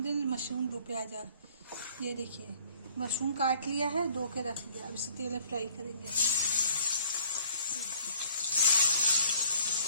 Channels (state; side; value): inverted; both; correlation -0.57